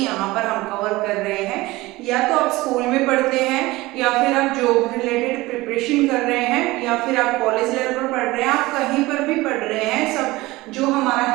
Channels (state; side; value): quieter; left; 19.9 dB